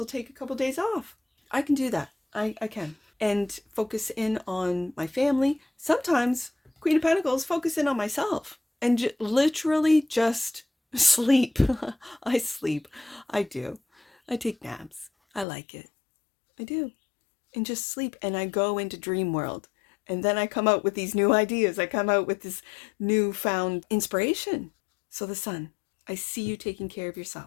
take a couple days off, I can do that. I can. And focus in on my family. Sometimes, Queen of Pentacles, focus in on myself. And literally just sleep. I sleep. I do. I take naps. I like it. I do. And just sleep. And I go into dream world. And then I come out with these new ideas. I come out with this newfound inspiration. So the Sun, I see you taking care of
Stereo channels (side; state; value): right; drops out; at 15.5 s